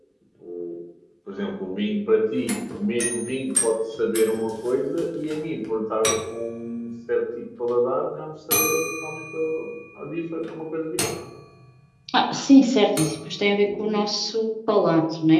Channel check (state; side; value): identical; both; correlation 1.00